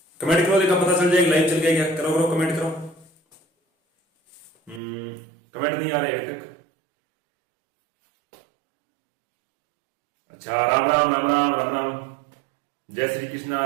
कमेंट करो, देखा पता चल जाएगा लाइव चल गया क्या। करो करो कमेंट करो। कमेंट नहीं आ रहे अभी तक। अच्छा, राम राम राम राम राम राम, जय श्री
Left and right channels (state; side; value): drops out; left; at 4.8 s